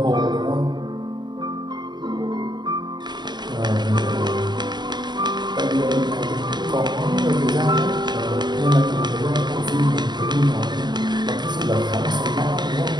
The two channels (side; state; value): left; late; 0.21 ms